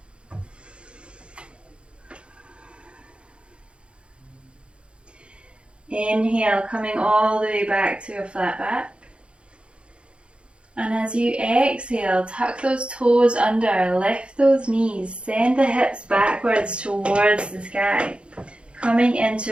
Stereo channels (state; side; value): late; left; 0.057 ms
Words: Inhale, coming all the way back to a flat back. And as you exhale, tuck those toes under, lift those knees, send the hips backwards towards the sky, coming